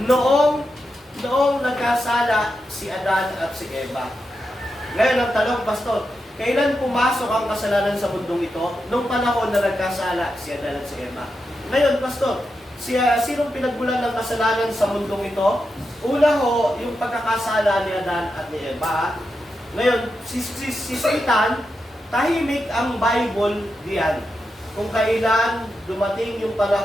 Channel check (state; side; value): normal; both; correlation 0.87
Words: noong nagkasala si Adan at si Eva. Ngayon ang tanong, Pastor, kailan pumasok ang kasalanan sa mundong ito? Nung panahon na nagkasala si Adan at si Eva. Ngayon, Pastor, sinong pinagmulan ng kasalanan sa mundong ito? Una ho, yung pagkakasala ni Adan at ni Eva. Ngayon, si Satan, tahimik ang Bible diyan. Kung kailan dumating yung